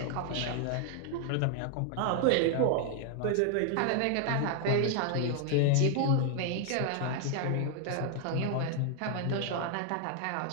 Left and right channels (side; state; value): both; different; correlation 0.00